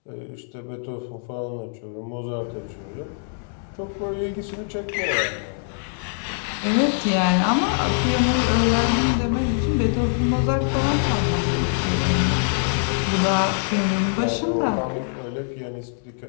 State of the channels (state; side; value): silent; right; digital silence